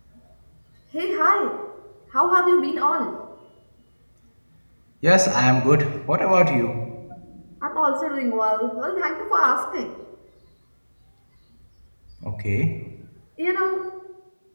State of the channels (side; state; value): both; inverted; correlation -1.00